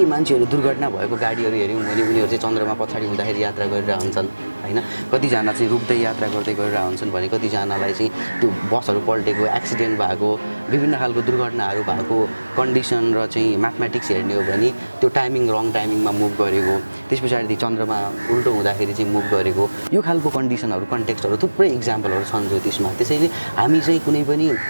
मान्छेहरू दुर्घटना भएको गाडीहरू हेऱ्यौँ भने उनीहरू चाहिँ चन्द्रमा पछाडि हुँदाखेरि यात्रा गरिरहेको हुन्छन् होइन कतिजना चाहिँ रुक्दै यात्रा गर्दै गरिरहेको हुन्छन् भने कतिजनालाई चाहिँ त्यो बसहरू पल्टेको एक्सिडेन्ट भएको विभिन्न खालको दुर्घटनाहरू भएको कन्डिसन र चाहिँ म्याथमेटिक्स हेर्ने हो भने त्यो टाइमिङ रङ टाइमिङमा मुभ गरेको त्यस पछाडि चन्द्रमा उल्टो हुँदाखेरि चाहिँ मुभ गरेको यो खालको कन्डिसनहरू कन्टेक्स्टहरू थुप्रै इक्जाम्पलहरू छन् ज्योतिषमा त्यसैले हामी चाहिँ कुनै पनि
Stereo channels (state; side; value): inverted; both; correlation -1.00